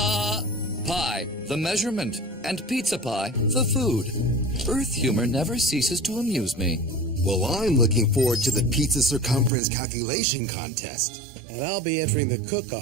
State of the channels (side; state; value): left; drops out; at 9.5 s